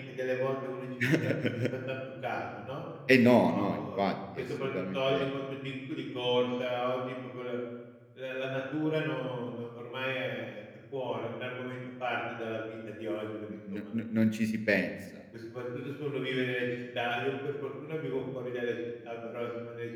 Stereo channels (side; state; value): both; identical; correlation 1.00